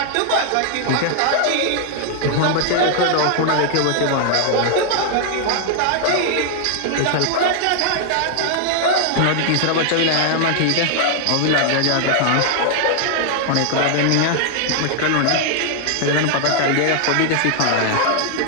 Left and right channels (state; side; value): different; both; correlation 0.00